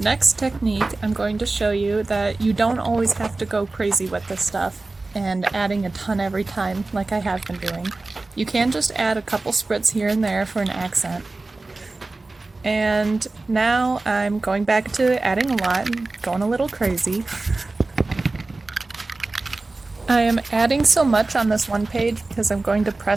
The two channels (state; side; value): quieter; left; 3.3 dB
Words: technique, I'm going to show you that you don't always have to go crazy with this stuff and adding a ton every time like I have been doing. You can just add a couple spritz here and there for an accent. And now I'm going back to adding a lot and going a little crazy. I am adding so much on this one page because I'm going to